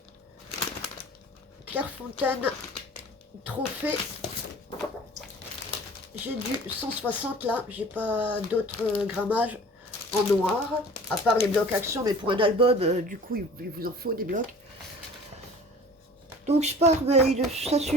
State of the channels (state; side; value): normal; both; correlation 0.45